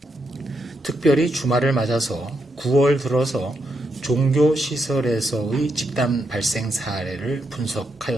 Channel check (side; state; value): both; normal; correlation 0.81